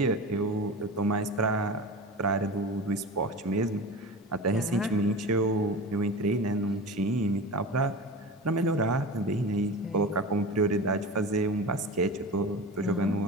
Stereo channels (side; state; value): both; normal; correlation 0.31